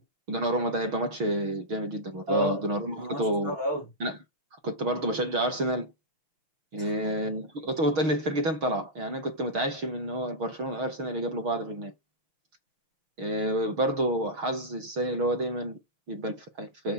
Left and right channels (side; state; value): left; late; 6.3 ms